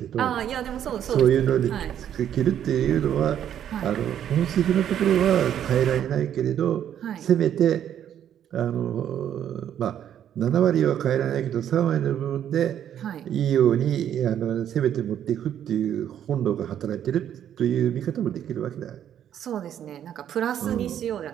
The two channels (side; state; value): left; quieter; 10.0 dB